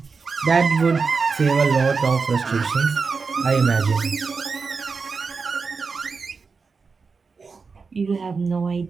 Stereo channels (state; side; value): quieter; left; 4.8 dB